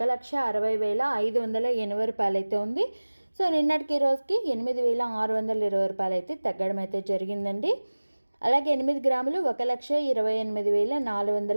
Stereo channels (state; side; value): inverted; both; correlation -1.00